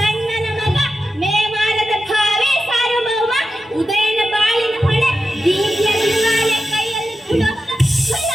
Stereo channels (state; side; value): normal; both; correlation 0.91